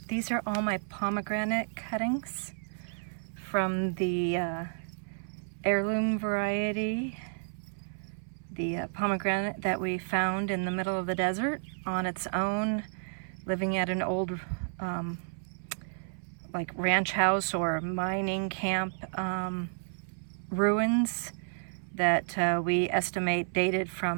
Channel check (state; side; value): silent; left; 57 dB below the other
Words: These are all my pomegranate cuttings from the heirloom variety, the pomegranate that we found in the middle of the desert on its own, living at an old like ranch house or mining camp ruins that we estimate dated